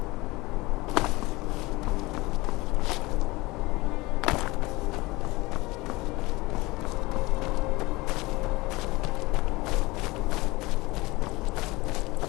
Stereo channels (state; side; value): quieter; right; 22.0 dB